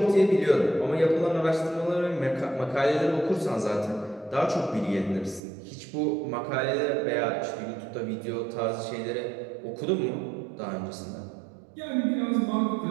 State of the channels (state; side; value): drops out; left; at 5.4 s